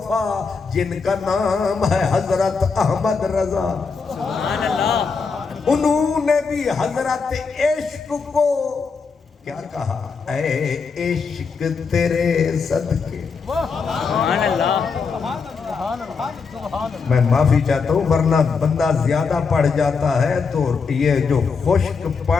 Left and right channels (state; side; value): quieter; right; 5.1 dB